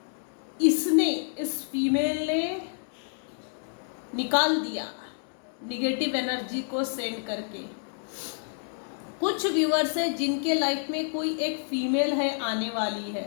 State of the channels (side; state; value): right; silent; digital silence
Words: इसने, इस फीमेल ने निकाल दिया, निगेटिव एनर्जी को सेंड करके। कुछ व्यूअर्स हैं जिनके लाइफ में कोई एक फीमेल है आने वाली